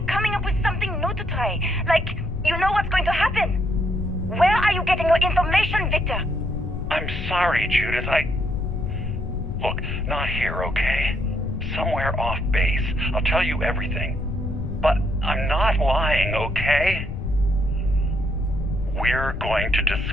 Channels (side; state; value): left; noise; rumble, 5 dB below the sound